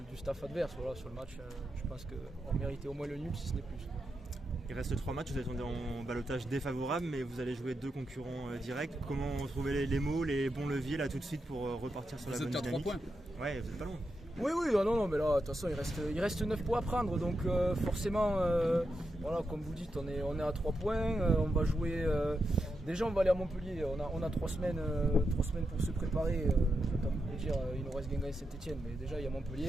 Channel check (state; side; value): normal; both; correlation 0.86